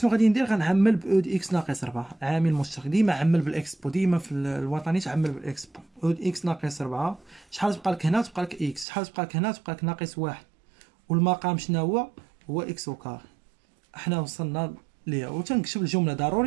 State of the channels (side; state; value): left; drops out; at 8.8 s